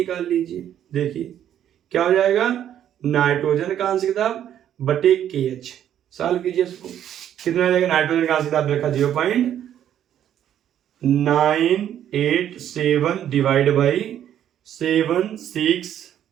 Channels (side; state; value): left; quieter; 10.5 dB